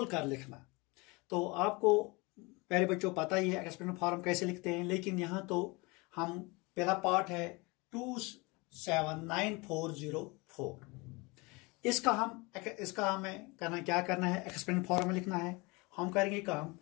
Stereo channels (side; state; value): right; quieter; 26.1 dB